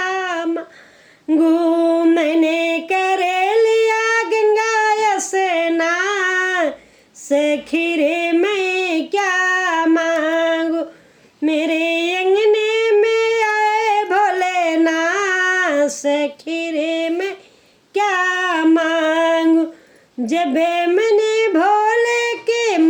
मांगू, मैंने कर लिया गंगा स्नान। सखी रे मैं क्या मांगू। मेरे अंगने में आए भोलेनाथ, सखी रे मैं क्या मांगू। जब मैंने भोले के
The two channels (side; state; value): both; identical; correlation 1.00